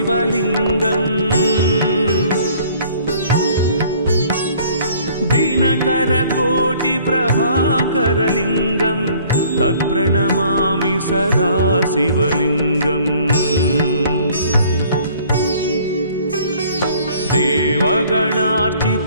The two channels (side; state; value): both; inverted; correlation -0.55